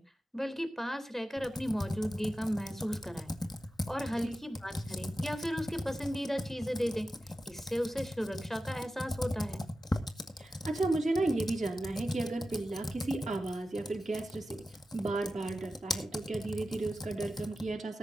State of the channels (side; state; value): both; normal; correlation 0.92